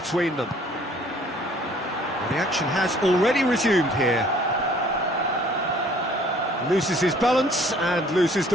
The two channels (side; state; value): both; normal; correlation 0.56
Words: them. Well, the action has already resumed here. Loses his balance and loses